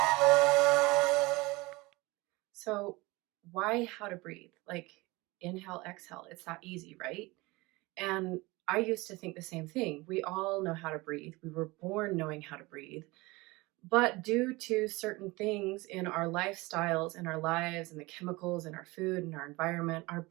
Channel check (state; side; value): quieter; left; 22.7 dB